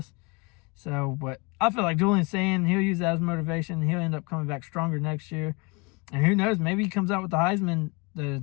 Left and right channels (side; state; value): right; quieter; 28.6 dB